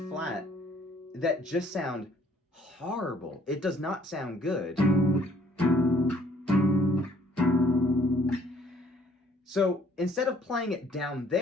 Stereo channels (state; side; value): normal; both; correlation 0.61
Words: flat that just sound horrible. It does not sound good. So instead of playing it down